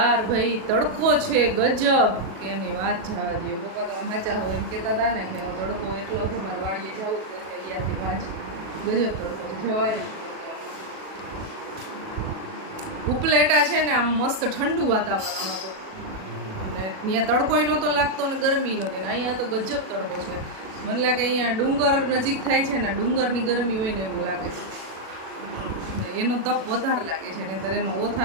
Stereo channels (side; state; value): left; late; 37 ms